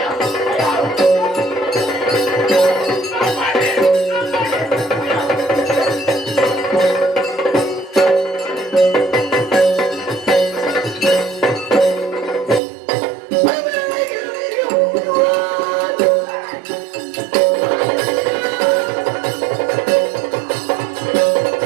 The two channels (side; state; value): left; drops out; at 12.6 s